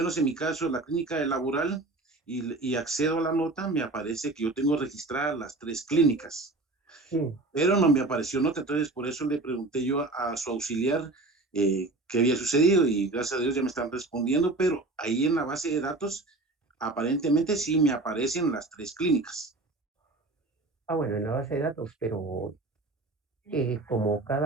en mi caso, la clínica de laboral, y accedo a la nota, me aparece que yo tengo registradas las tres clínicas, Sí. pero no me apareció nota, entonces por eso le pregunté yo a su auxiliar qué había sucedido y gracias a Dios ya me están respondiendo, pero ahí en la base de datos aparentemente sí me aparecen las tres clínicas. Ah, bueno, en la base de datos, pero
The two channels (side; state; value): left; quieter; 3.1 dB